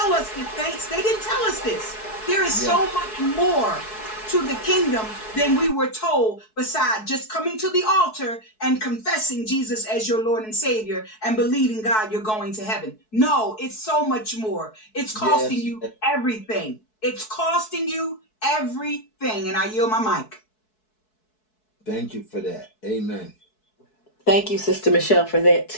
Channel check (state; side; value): late; right; 4.6 ms